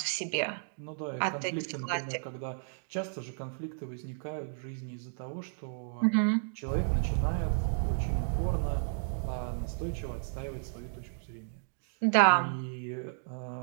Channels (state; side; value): silent; left; digital silence